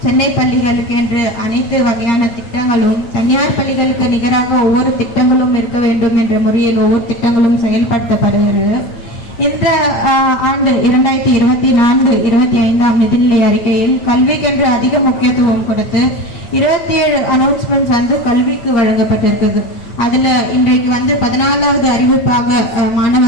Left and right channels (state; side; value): late; right; 9.1 ms